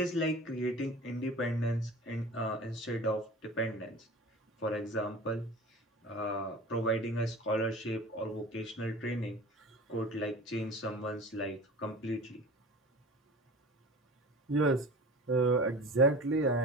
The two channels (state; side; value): normal; both; correlation 0.38